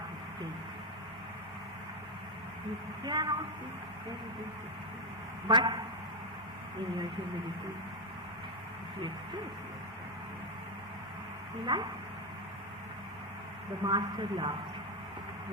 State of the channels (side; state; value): both; normal; correlation 0.05